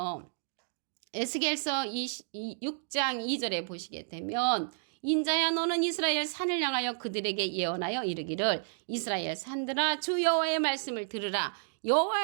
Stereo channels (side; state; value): left; silent; digital silence